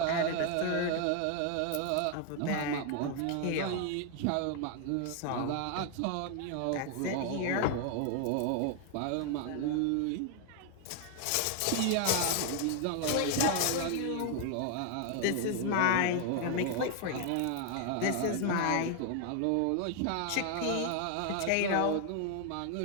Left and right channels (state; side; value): different; both; correlation 0.00